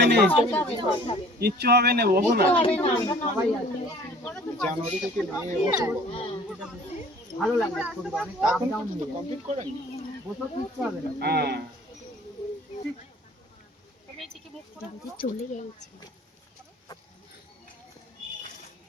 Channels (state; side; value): normal; both; correlation 0.51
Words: না, কিচ্ছু হবে না, বসো না। জানুয়ারি থেকে নিয়ে বসে ভালো লাগে, অনেক আপ ডাউন কমপ্লিট করেন, বসে কিচ্ছু হবে না। হ্যাঁ, চলে গেছে।